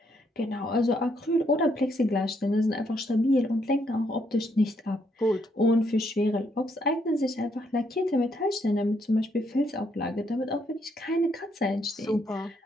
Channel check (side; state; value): both; normal; correlation 0.74